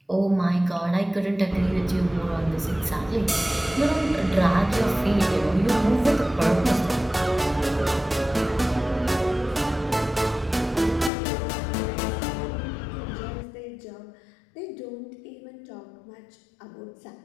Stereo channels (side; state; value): right; drops out; at 11.1 s